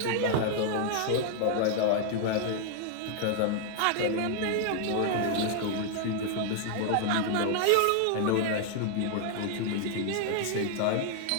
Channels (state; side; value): different; both; correlation 0.00